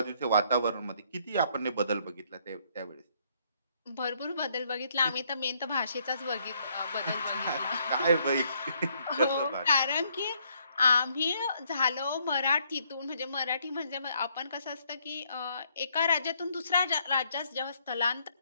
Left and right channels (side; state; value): both; inverted; correlation -0.69